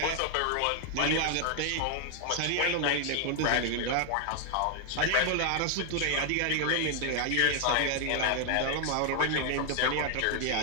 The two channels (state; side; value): different; both; correlation 0.00